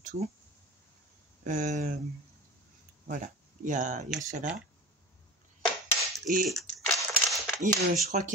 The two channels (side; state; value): both; normal; correlation 0.33